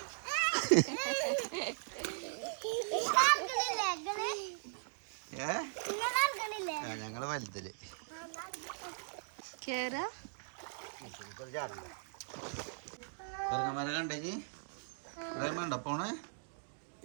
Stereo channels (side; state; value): left; silent; digital silence